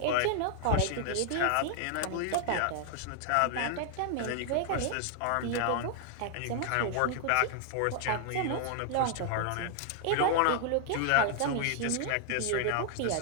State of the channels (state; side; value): different; both; correlation 0.00